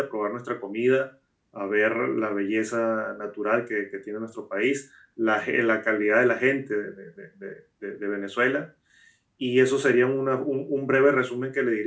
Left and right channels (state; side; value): identical; both; correlation 1.00